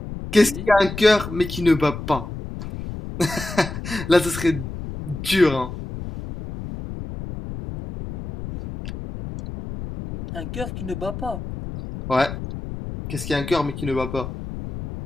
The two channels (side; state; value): left; noise; rumble, 9 dB below the sound